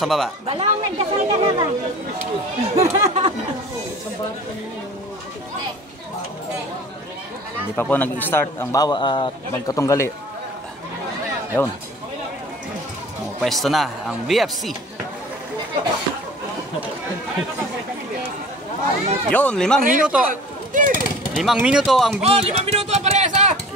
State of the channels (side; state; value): both; normal; correlation 0.44